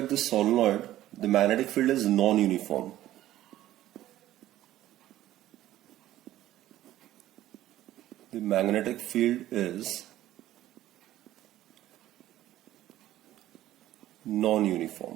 the magnetic field is non-uniform. The magnetic field is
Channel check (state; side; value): quieter; left; 14.0 dB